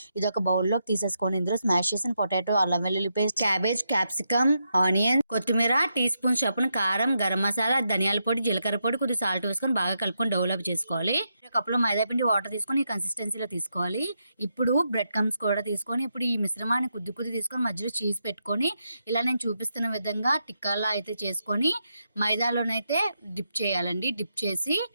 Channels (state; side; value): inverted; both; correlation -0.83